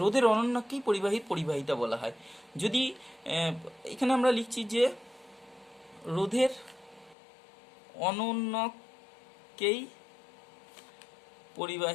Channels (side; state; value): right; drops out; at 7.2 s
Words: রোধের অনন্যককেই পরিবাহীর পরিবাহিতা বলা হয়। যদি এখানে আমরা লিখছি যে রোধের অনন্যককেই